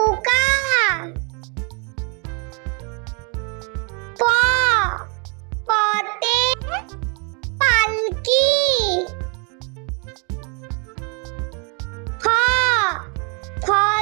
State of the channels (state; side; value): quieter; left; 34.8 dB